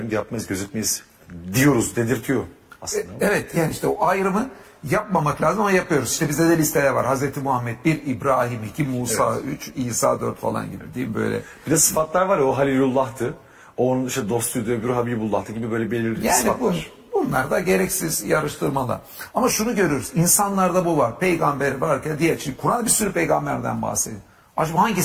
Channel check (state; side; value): identical; both; correlation 1.00